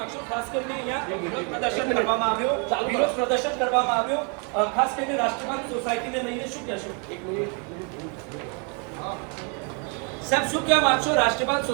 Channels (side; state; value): left; quieter; 36.5 dB